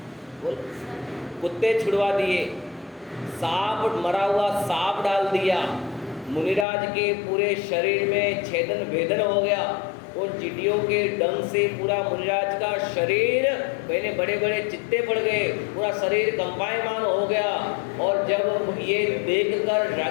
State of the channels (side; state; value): right; drops out; at 6.7 s